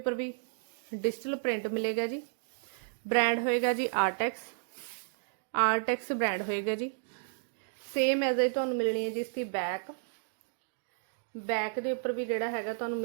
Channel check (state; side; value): silent; left; digital silence